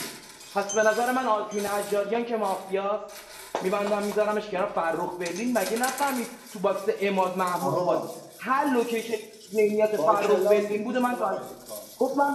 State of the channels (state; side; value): identical; both; correlation 1.00